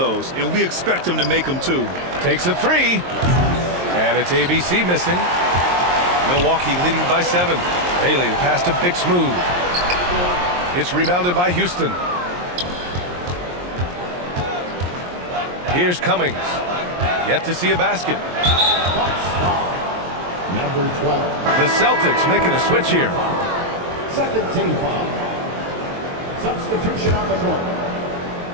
and we expect him to make them too. Takes a 3. And it's ABC missing. Milwaukee leading by 7. Bailey, the pass to Big Smooth. It's rebounded by Houston. Here's Cummings. Yet to see a basket. Number 12. The Celtics making a switch here. Second team foul. Substitution on the court.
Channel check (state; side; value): late; left; 23 ms